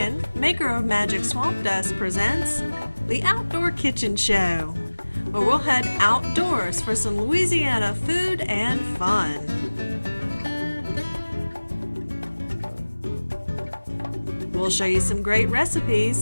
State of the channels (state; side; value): inverted; both; correlation -1.00